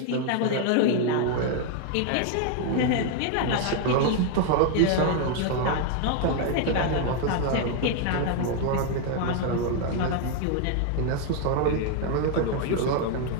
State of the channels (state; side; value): different; both; correlation 0.00